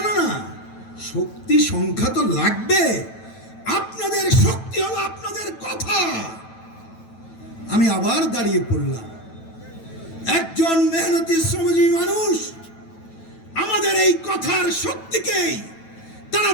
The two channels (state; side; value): late; right; 9.1 ms